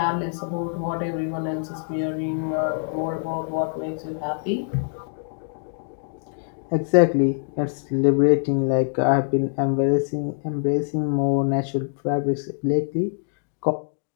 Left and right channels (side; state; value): right; silent; digital silence